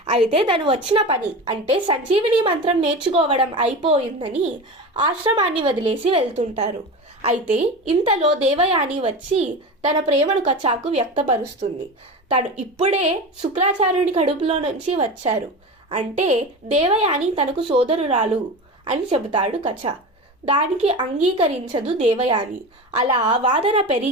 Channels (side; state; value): both; normal; correlation 0.27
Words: అయితే తను వచ్చిన పని అంటే సంజీవిని మంత్రం నేర్చుకోవడం అయిపోయిందని ఆశ్రమాన్ని వదిలేసి వెళ్తుంటారు. అయితే ఇంతలో దేవయాని వచ్చి తన ప్రేమను కచాకు వ్యక్తపరుస్తుంది. తను ఇప్పుడే శుక్రాచార్యుని కడుపులో నుంచి వచ్చారు, అంటే దేవయాని తనకు సోదరురాలు అని చెబుతాడు కచ. దానికి అంగీకరించదు దేవయాని. అలా వాదన